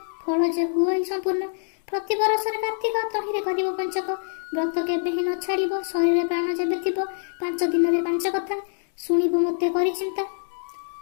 फल जे हुए संपूर्ण, प्रति बरस कार्तिक तहिरे करिब पंचक। व्रत केबे ही न छाड़िब, शरीर प्राण जेबे थिब। 5 दिन 5 कथा शुणिब मते करि चिंता।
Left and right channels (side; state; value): right; silent; digital silence